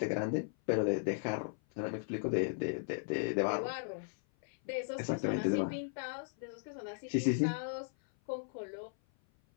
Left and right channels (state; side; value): silent; right; 53 dB below the other